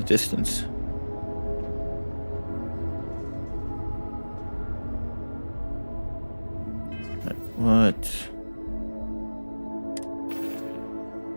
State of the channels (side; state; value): both; inverted; correlation -1.00